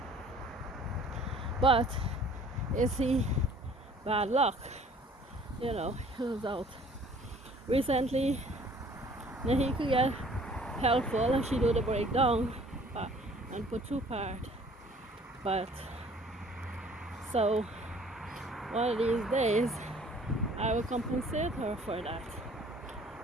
But you see, bad luck, he was out. Recently, then he could get helpful and she do the breakdown and put two part. But so one of these days I will compensate her for that.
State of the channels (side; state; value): both; normal; correlation 0.54